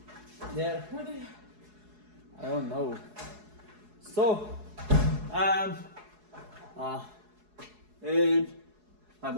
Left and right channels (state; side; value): late; left; 4.7 ms